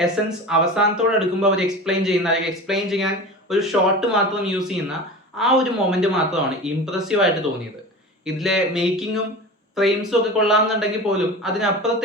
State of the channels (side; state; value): both; normal; correlation 0.32